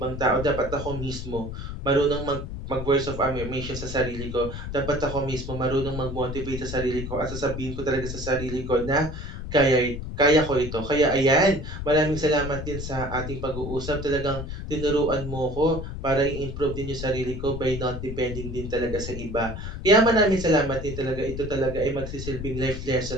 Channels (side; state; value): left; noise; rumble, 7 dB below the sound